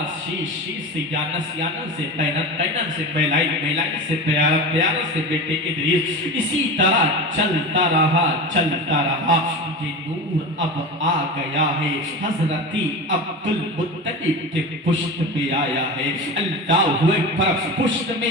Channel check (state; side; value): normal; both; correlation 0.28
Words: شیش، شیش سے یانس، یانس سے قینن، قینن سے میلائی، میلائی سے پیارا، پیارا سے بیٹے ادریس. اسی طرح چلتا رہا چلتا رہا. یہ نور اب آ گیا ہے حضرت عبد المطلب کے پشت میں آیا ہے. اللہ اکبر. پشت میں